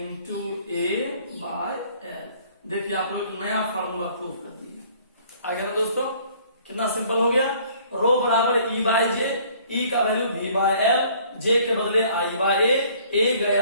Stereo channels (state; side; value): inverted; both; correlation -0.57